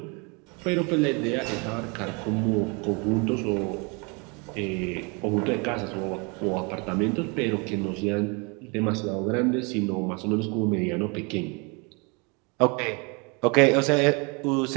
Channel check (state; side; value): quieter; left; 31.3 dB